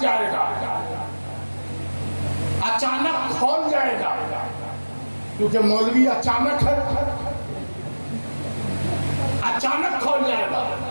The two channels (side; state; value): both; inverted; correlation -1.00